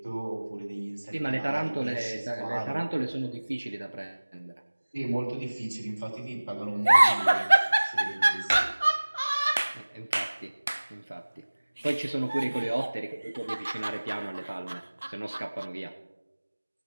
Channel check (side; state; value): both; inverted; correlation -1.00